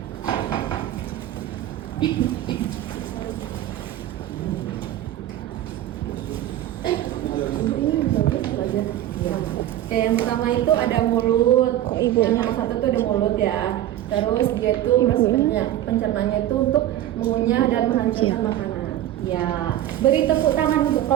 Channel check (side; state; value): left; quieter; 12.9 dB